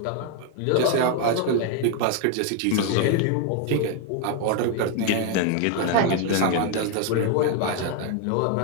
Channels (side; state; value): both; different; correlation 0.01